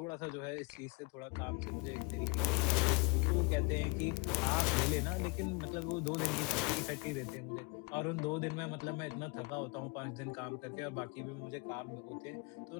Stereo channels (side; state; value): right; quieter; 29.6 dB